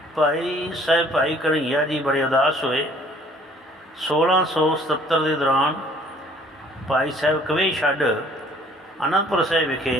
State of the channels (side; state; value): both; normal; correlation 0.57